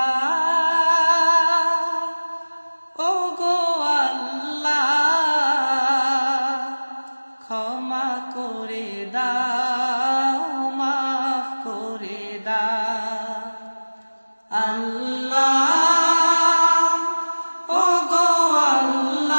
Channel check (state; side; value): inverted; both; correlation -1.00